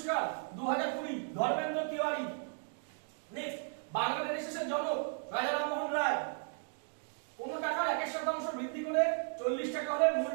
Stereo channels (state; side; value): silent; left; 54 dB below the other